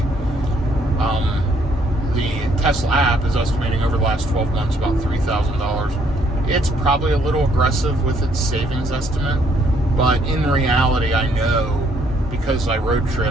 The Tesla app is estimating over the last 12 months about $3,000. It's probably a little aggressive with its savings estimate, but in reality, I know, because I road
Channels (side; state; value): both; normal; correlation 0.68